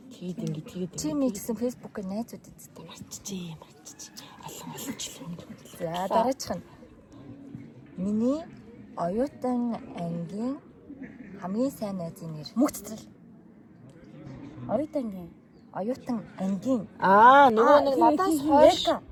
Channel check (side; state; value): both; identical; correlation 1.00